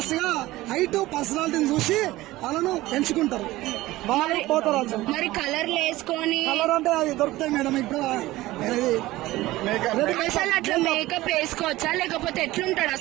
గా హైట్, పర్సనాలిటీని చూసి వాళ్ళను ఎంచుకుంటారు. వాళ్ళు పోతరాజు. మరి కలర్లు వేసుకొని కలర్ అంటే అది దొరుకుతాయి మేడం. ఇప్పుడు అసలు అట్లా మేకప్ వేసుకోవచ్చా లేకపోతే ఎట్లుంటాడు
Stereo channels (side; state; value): left; quieter; 17.6 dB